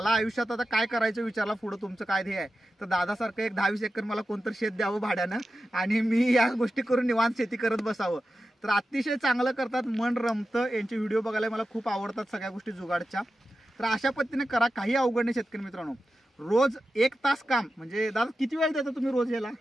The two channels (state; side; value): normal; both; correlation 0.92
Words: आयुष्यात आता काय करायचं विचारला पुढं तुमचं काय ध्येय आहे, तर दादासारखं एक 10-20 एकर मला कोणतरी शेत द्यावं भाड्यानं आणि मी या गोष्टी करून निवांत शेती करत बसावं. तर अतिशय चांगलं करतात, मन रमतं. यांचे व्हिडिओ बघायला मला खूप आवडतात सगळ्या गोष्टी जुगाडच्या. तर अशा पद्धतीने करा, काही अवघड नाही शेतकरी मित्रांनो. रोज 1 तास काम, म्हणजे दादा किती वेळ देता तुम्ही रोज याला?